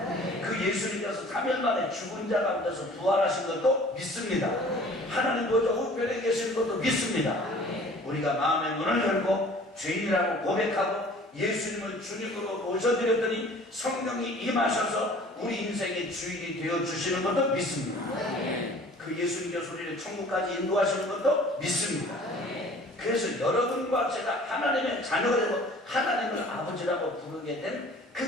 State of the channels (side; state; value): both; normal; correlation 0.49